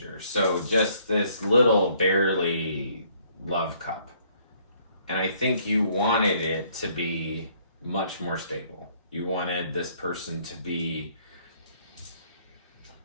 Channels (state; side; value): inverted; both; correlation -0.64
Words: So just this little, barely love cup. And I think you wanted it to be much more stable. You wanted this person to be